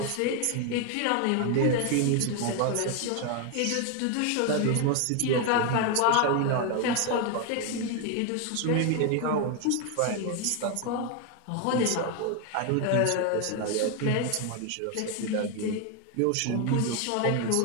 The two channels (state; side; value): different; both; correlation 0.01